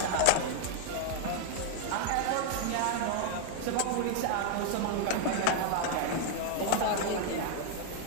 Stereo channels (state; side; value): different; both; correlation 0.00